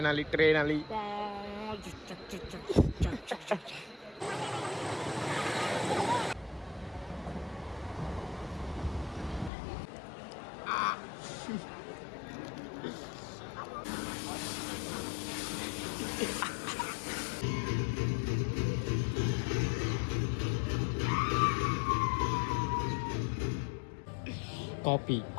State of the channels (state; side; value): drops out; right; at 9.5 s